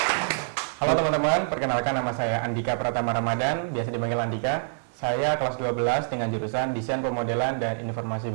Halo teman-teman, perkenalkan nama saya Andika Pratama Ramadan, biasa dipanggil Andika. Saya kelas 12 dengan jurusan Desain Pemodelan dan Informasi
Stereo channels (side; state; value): left; silent; digital silence